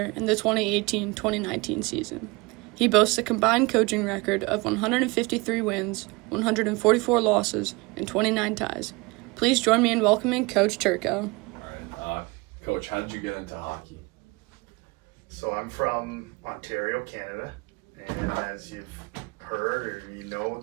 in the 2018-2019 season. He boasts a combined coaching record of 153 wins, 144 losses, and 29 ties. Please join me in welcoming Coach Turco. All right, Coach, how did you get into hockey? So I'm from Ontario, Canada, and as you've heard or you know,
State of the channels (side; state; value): left; quieter; 25.6 dB